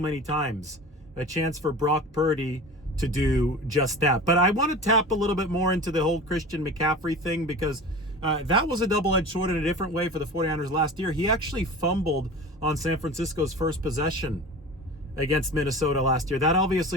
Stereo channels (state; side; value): normal; both; correlation 0.35